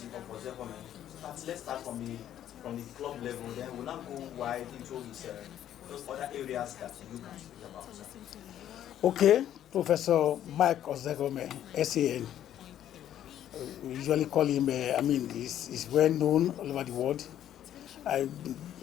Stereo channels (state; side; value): quieter; right; 11.2 dB